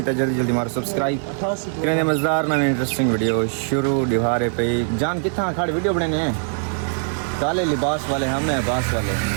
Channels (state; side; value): silent; left; 65 dB below the other